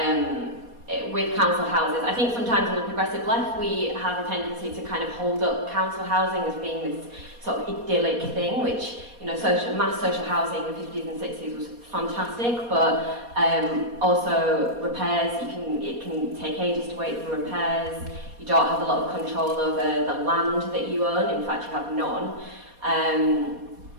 with council houses, I think sometimes on the progressive left we have a tendency to kind of hold up council housing as being this sort of idyllic thing, which, you know, mass social housing in the 50s and 60s was fantastic, but also repairs, it can take ages to wait for repairs, you don't have a lot of control over the land that you own, in fact you have none.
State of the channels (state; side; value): late; left; 4.2 ms